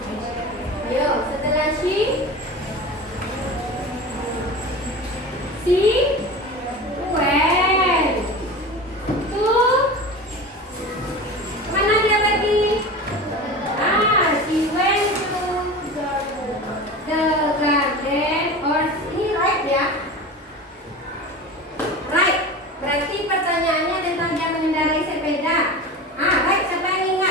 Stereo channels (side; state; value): both; normal; correlation 0.32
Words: Ayo, setelah she? Si? Went. To? Mana dia pergi? She went to the garden. Or ini right ya? Right. Berarti pertanyaannya tentang dia mengendarai sepeda. Right. Siapa yang